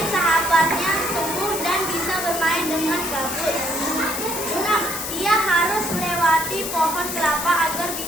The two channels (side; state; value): left; noise; hiss, 5 dB below the sound